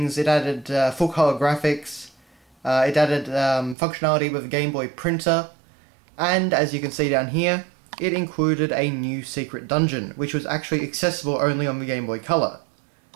It added full color graphics, it added functionality with the Game Boy printer, and as you can see down here, it included a new secret dungeon, which was actually accessible only on the Game Boy Color.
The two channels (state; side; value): drops out; left; at 3.8 s